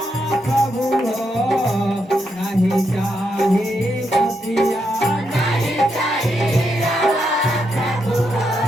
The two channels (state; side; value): normal; both; correlation 0.81